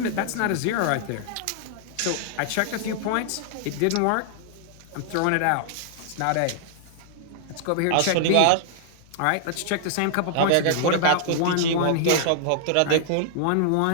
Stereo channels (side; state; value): both; different; correlation -0.01